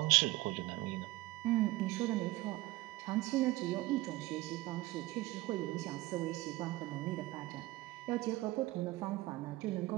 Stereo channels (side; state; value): left; quieter; 19.0 dB